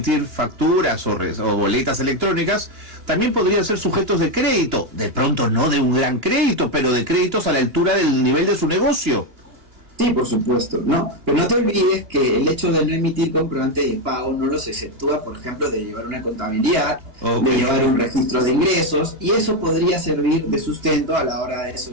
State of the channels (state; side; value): late; left; 2.8 ms